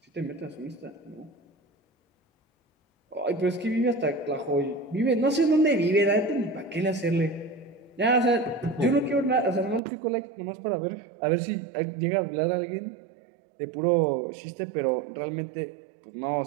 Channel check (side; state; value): left; drops out; at 9.8 s